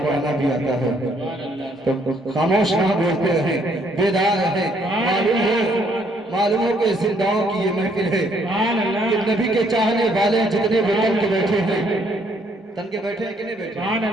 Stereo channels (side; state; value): both; normal; correlation 0.68